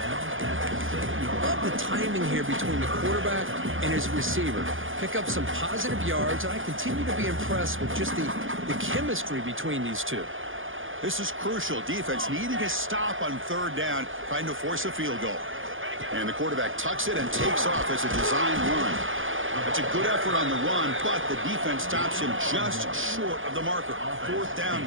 Love the timing here between the quarterback and his receiver. Pick up some positive yards, and I continue to be impressed with just the chemistry between these two. This is crucial. Defense needing a stop on 3rd down, trying to force a field goal. And the quarterback tucks it and takes off as a design run. It's a good effort on the run, but the defense stops him just short of the marker. 4th down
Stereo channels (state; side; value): late; left; 0.58 ms